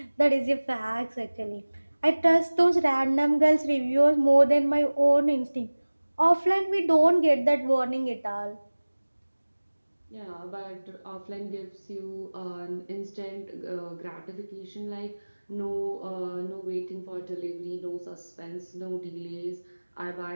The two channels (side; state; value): both; inverted; correlation -1.00